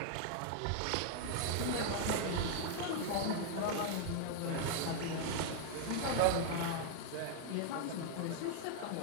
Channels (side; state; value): both; different; correlation 0.00